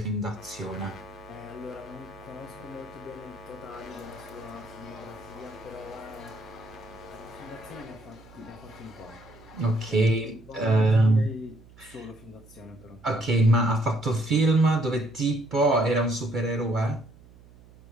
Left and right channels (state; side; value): noise; right; hum, 23 dB below the sound